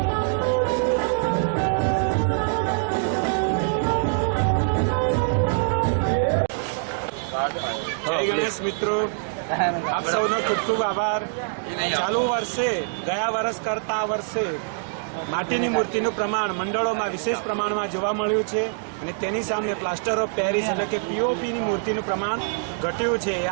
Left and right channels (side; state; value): left; silent; digital silence